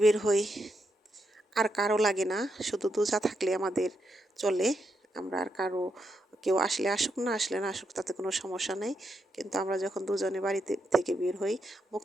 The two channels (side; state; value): both; normal; correlation 0.82